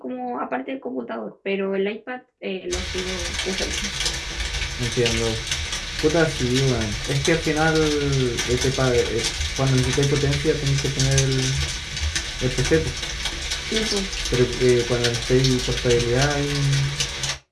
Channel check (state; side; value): identical; both; correlation 1.00